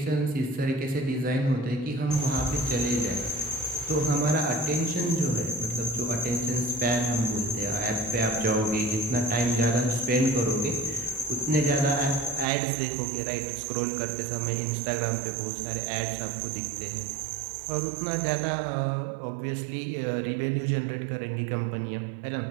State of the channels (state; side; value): drops out; left; at 12.5 s